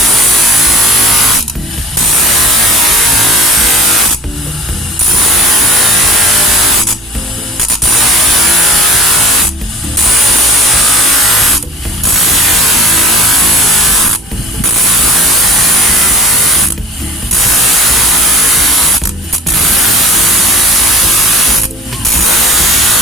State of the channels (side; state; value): both; normal; correlation 0.43